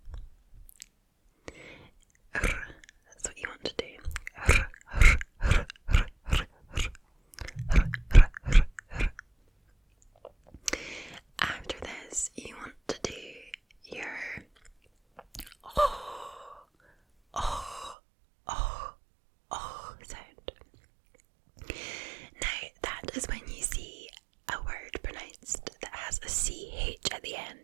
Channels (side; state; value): left; drops out; at 17.9 s